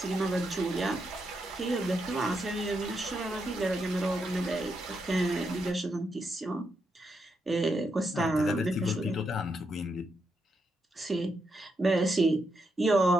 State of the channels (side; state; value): both; normal; correlation 0.82